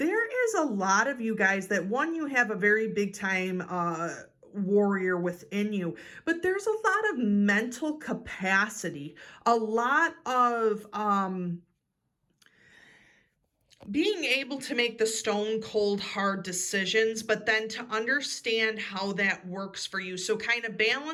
is a lot of you guys that, one, you have a very big time warrior within you, but there's a lot of mental capacity, a lot of being able to make the stone cold hard decisions, but then to understand how that works for you. So kind of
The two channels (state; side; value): identical; both; correlation 1.00